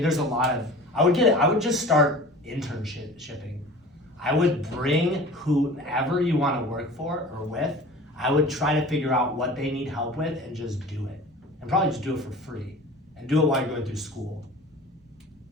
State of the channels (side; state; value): both; normal; correlation 0.40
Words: there's a lot of, I would just start shipping. I would bring whoever you want to work for or with. I would try to figure out what they need help with and just do it. And probably just do it for free. And do it while you're going through school.